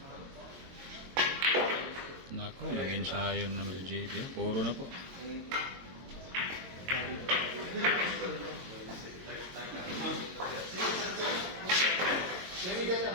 Nako, nag-ensayo na naman si JB ha, puro na po.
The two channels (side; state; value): left; late; 22 ms